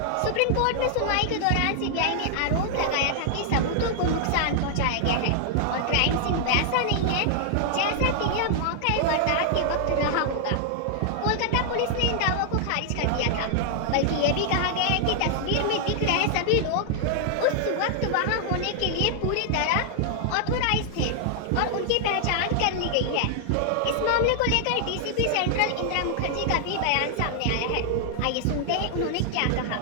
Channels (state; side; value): different; both; correlation 0.00